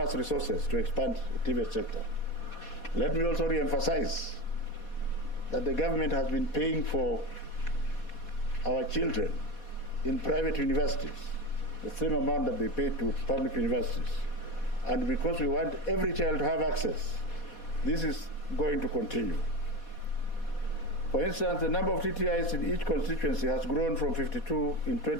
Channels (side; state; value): right; late; 4.2 ms